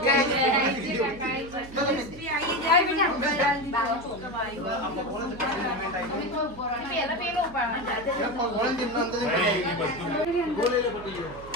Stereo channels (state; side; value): noise; right; hum, 17 dB below the sound